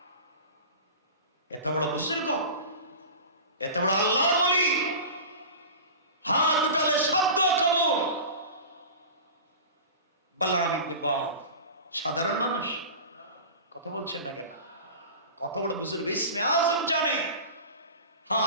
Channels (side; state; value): both; inverted; correlation -0.33